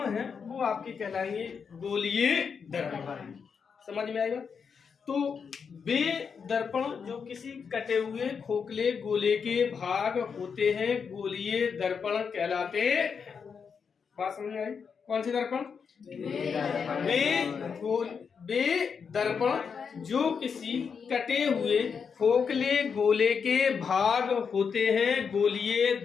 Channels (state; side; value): quieter; right; 6.2 dB